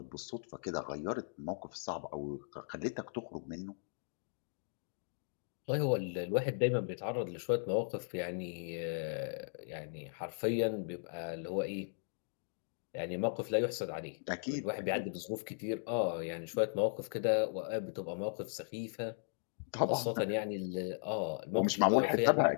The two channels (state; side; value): silent; right; digital silence